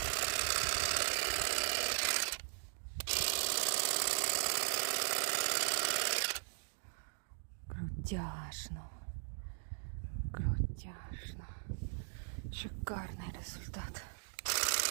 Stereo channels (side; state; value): left; silent; digital silence